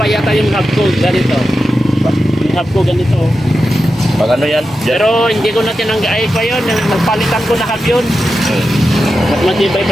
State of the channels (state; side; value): normal; both; correlation 0.90